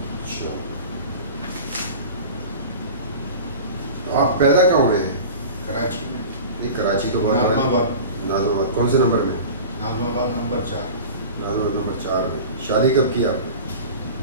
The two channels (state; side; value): inverted; both; correlation -0.35